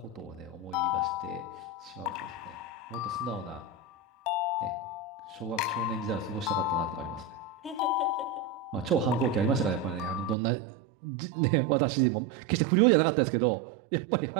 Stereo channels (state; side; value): drops out; left; at 10.4 s